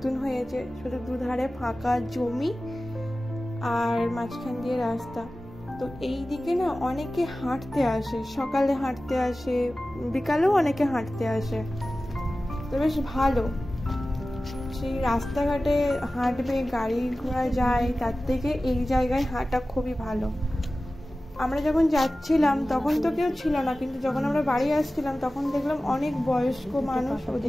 হয়েছে, শুধু দুধারে ফাঁকা জমি আর মাঝখান দিয়ে রাস্তা। তো এই দিকে না অনেকে হাঁটতে আসে, সকালে হাঁটতে আসে, বিকালেও অনেকে হাঁটতে আসে, তো বেশ ভালো। সেই রাস্তাঘাটে হাঁটবে, গাড়ি ঘোড়া যায়, তার থেকে এই জায়গায় হাঁটা খুবই ভালো। আমরা যখন যাচ্ছিলাম তখন তো কেউ ছিল না, কিন্তু যখন আমরা বাড়ি আসছিলাম তখন দেখলাম অনেক বয়স্ক মানুষ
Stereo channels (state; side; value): normal; both; correlation 0.96